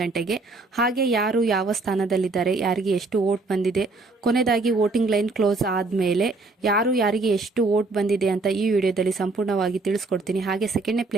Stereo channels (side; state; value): left; quieter; 3.5 dB